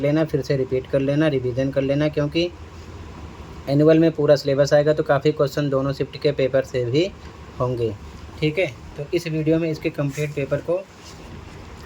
लेना, फिर से रिपीट कर लेना, रिवीजन कर लेना, क्योंकि एनुअल में पूरा सिलेबस आएगा तो काफ़ी क्वेश्चन दोनों शिफ्ट के पेपर से भी होंगे। ठीक है, तो इस वीडियो में इसके कंप्लीट पेपर को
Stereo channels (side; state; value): both; identical; correlation 1.00